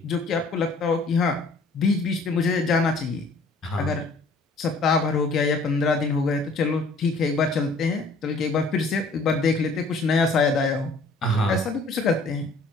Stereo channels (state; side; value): quieter; right; 3.4 dB